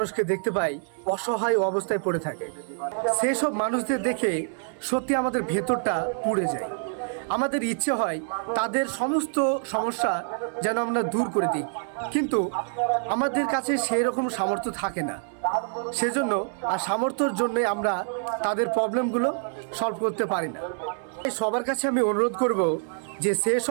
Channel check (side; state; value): left; silent; 61 dB below the other